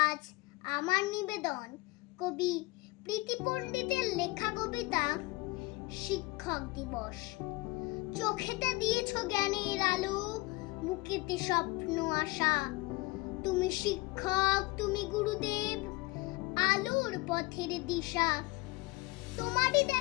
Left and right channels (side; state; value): right; quieter; 22.6 dB